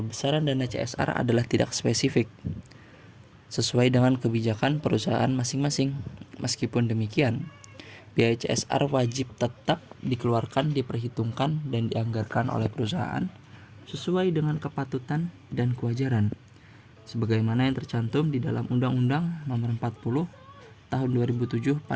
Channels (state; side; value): identical; both; correlation 1.00